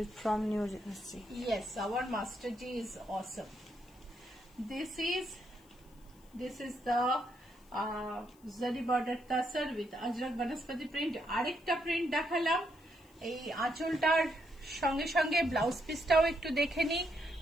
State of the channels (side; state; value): left; noise; hiss, 30 dB below the sound